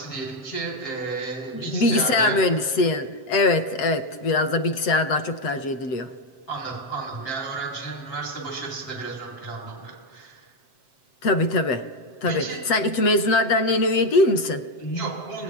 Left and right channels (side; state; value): right; late; 7.6 ms